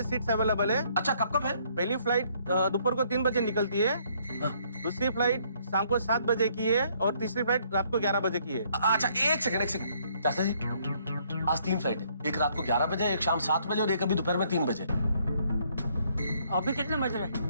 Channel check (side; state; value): both; inverted; correlation -0.67